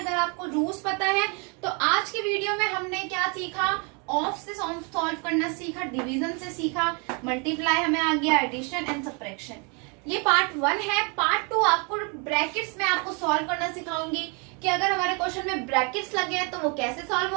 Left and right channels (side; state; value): left; quieter; 34.0 dB